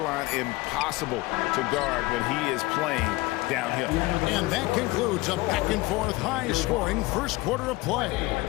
impossible to guard when he is playing downhill. And that concludes a back-and-forth, high-scoring first quarter of play.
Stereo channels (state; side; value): quieter; right; 21.0 dB